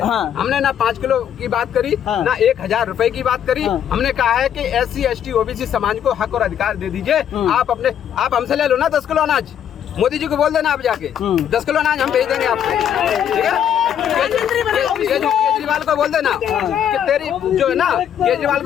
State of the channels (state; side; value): quieter; right; 9.4 dB